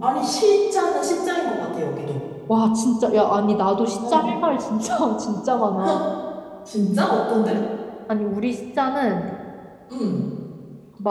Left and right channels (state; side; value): identical; both; correlation 1.00